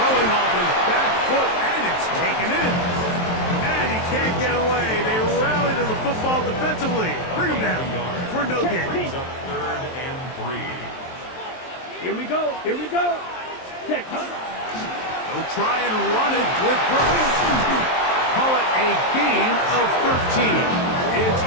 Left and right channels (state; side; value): late; right; 23 ms